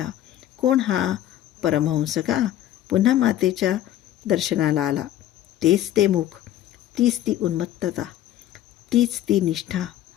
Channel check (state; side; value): quieter; right; 12.6 dB